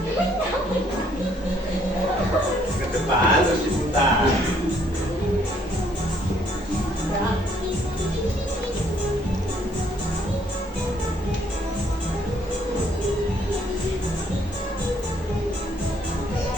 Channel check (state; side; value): normal; both; correlation 0.66